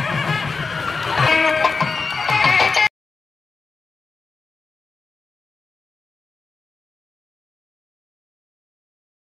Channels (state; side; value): quieter; right; 4.4 dB